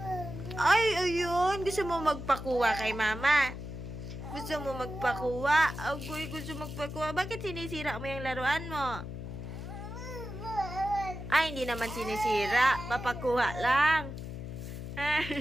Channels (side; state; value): left; noise; hum, 8 dB below the sound